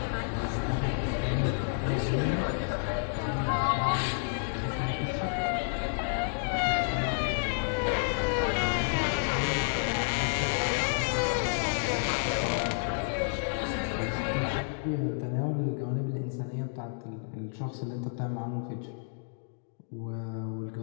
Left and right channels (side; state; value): right; silent; digital silence